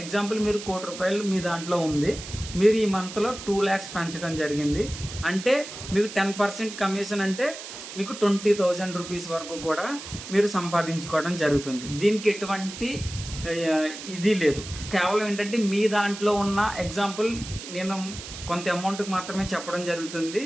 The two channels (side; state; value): right; noise; hiss, 11 dB below the sound